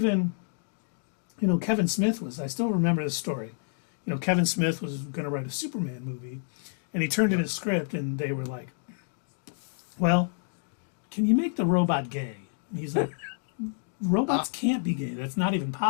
Kevin Smith I still remember this story. Kevin Smith was going to write a Superman movie, and he turned in his script, and they were like, well, can you make the robot gay? And he's like, robots can't be gay. That's not even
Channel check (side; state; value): right; silent; digital silence